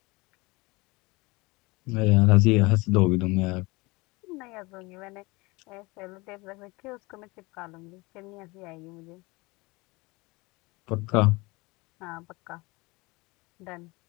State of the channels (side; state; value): right; quieter; 24.2 dB